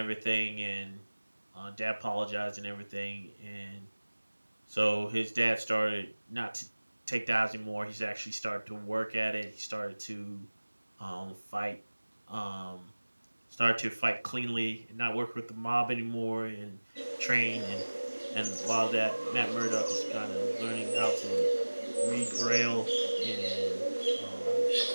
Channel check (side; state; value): both; inverted; correlation -1.00